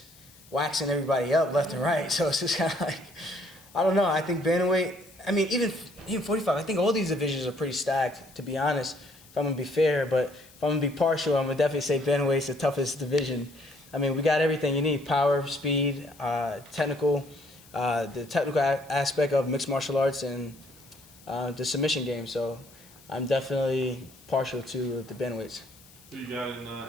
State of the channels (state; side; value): noise; left; hiss, 25 dB below the sound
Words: waxing everybody up left and right. So it's just kind of like, I don't know. I think bantamweight. I mean, even 45. I think all these divisions are pretty stacked, to be honest. If I'm gonna be fair, but if I'm gonna be partial, I'm gonna definitely say bantamweight's the toughest division. I mean, we got everything you need: power, speed, technical, the technical aspect of mixed martial arts, and the submission game. So I'm definitely partial to the bantamweights. Who you got in